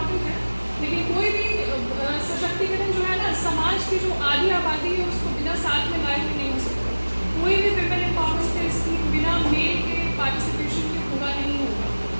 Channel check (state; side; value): inverted; both; correlation -1.00